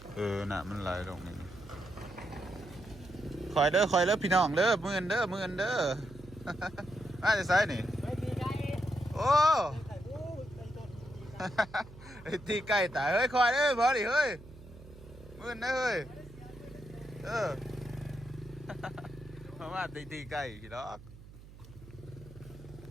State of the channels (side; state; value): right; noise; hum, 18 dB below the sound